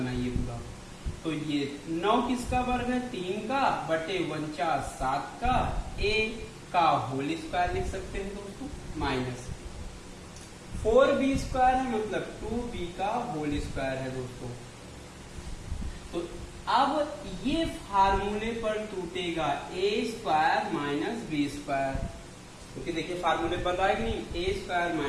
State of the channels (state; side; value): identical; both; correlation 1.00